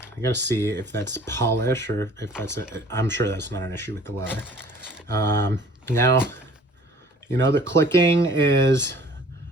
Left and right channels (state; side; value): normal; both; correlation 0.51